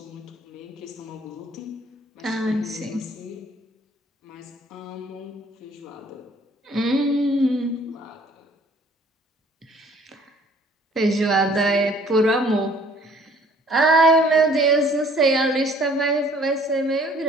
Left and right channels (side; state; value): both; normal; correlation 0.57